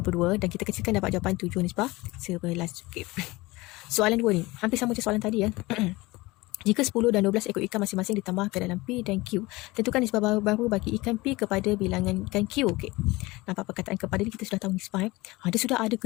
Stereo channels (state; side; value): quieter; right; 21.3 dB